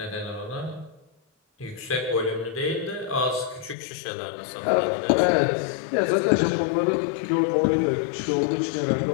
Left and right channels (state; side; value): drops out; right; at 3.8 s